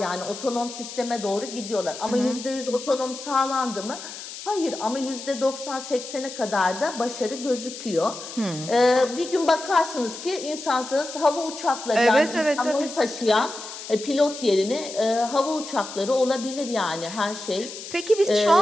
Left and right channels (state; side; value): noise; left; hiss, 11 dB below the sound